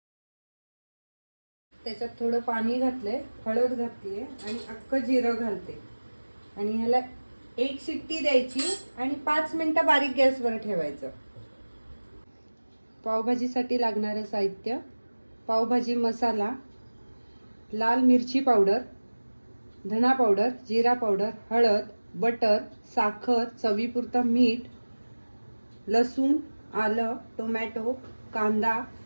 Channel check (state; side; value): inverted; both; correlation -1.00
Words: त्याच्यात थोडं पाणी घातले, हळद घातली आणि अख्खं जिरं घालते आणि ह्याला 1 शिट्टी द्यायची आणि 5 मिनिटं बारीक गॅसवर ठेवायचं। पावभाजीसाठी लागणारे साहित्य: पावभाजी मसाला, लाल मिरची पावडर, धना पावडर, जिरा पावडर, हळद, बटर, साखर, चवीपुरतं मीठ, लसूण, आलं, टोमॅटो, कांदा,